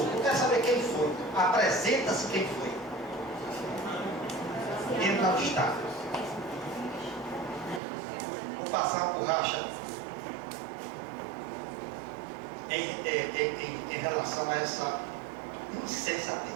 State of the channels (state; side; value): drops out; left; at 7.8 s